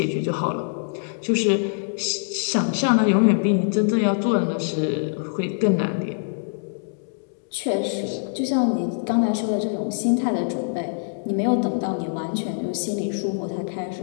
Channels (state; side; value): silent; right; digital silence